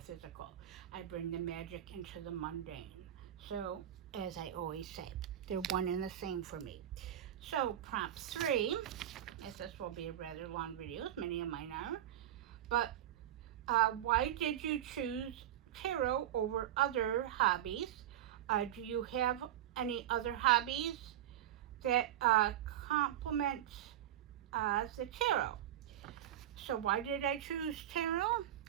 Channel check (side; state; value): left; quieter; 11.8 dB